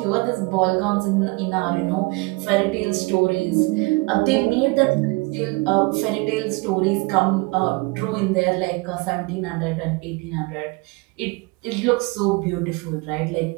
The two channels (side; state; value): left; quieter; 26.3 dB